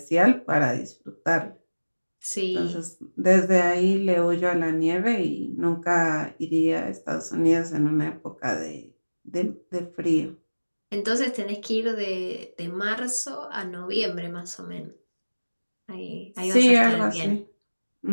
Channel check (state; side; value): inverted; both; correlation -1.00